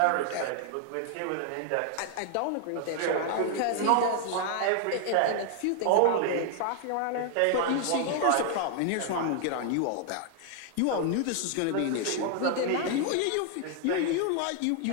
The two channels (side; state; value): both; different; correlation 0.00